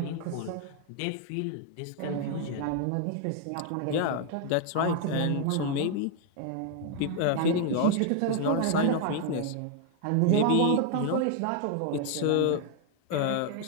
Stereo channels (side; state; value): both; different; correlation 0.00